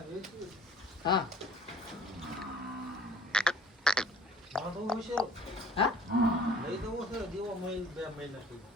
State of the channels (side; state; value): both; normal; correlation 0.50